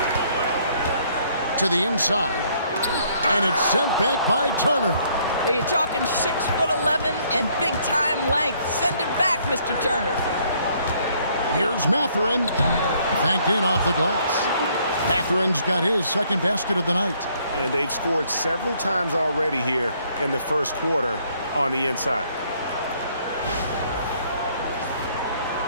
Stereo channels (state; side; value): inverted; both; correlation -0.65